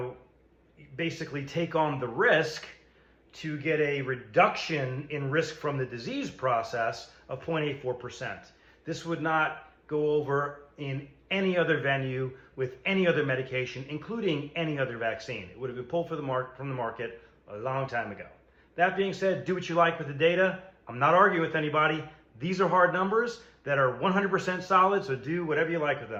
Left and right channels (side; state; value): both; identical; correlation 1.00